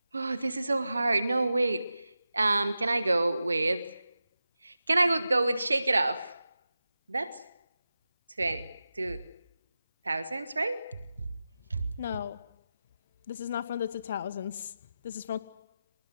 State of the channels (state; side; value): inverted; both; correlation -0.93